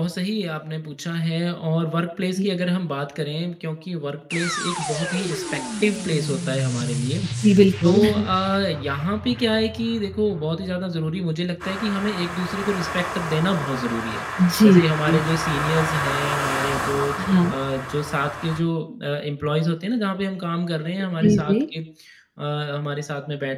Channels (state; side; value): identical; both; correlation 1.00